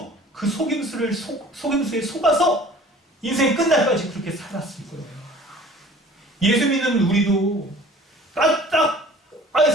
그 속임수에 속아서 인생 끝날까지 그렇게 살았을 거예요. 예수 믿는 우리도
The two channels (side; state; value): both; normal; correlation 0.48